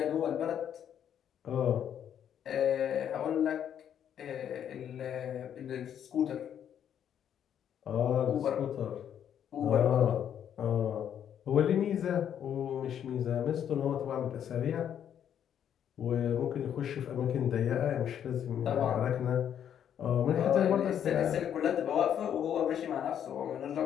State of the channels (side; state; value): right; quieter; 9.3 dB